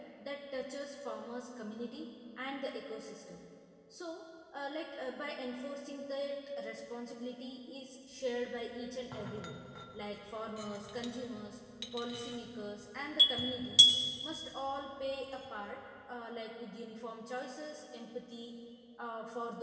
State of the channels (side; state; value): both; identical; correlation 1.00